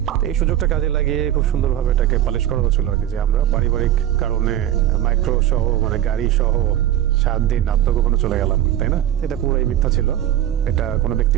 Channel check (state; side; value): quieter; left; 12.0 dB